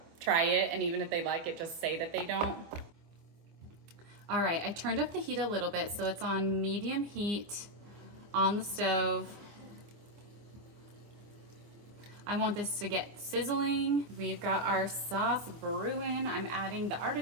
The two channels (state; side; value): late; left; 24 ms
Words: try it. And even if they like it, just say that they don't. All right, I turned up the heat a little bit, so it's on medium heat on the stove. I want this to get sizzling. We've got our sauce brewing. I'm adding the